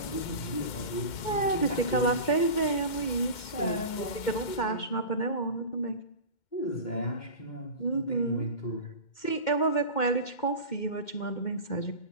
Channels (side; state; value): right; late; 2.1 ms